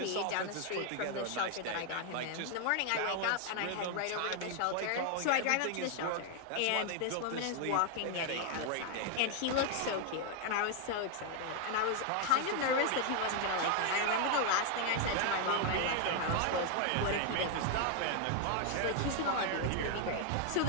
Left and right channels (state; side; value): different; both; correlation 0.00